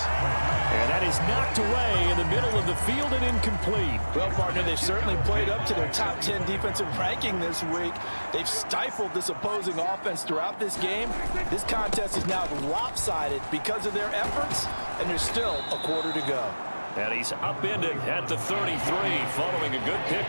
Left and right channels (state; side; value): inverted; both; correlation -1.00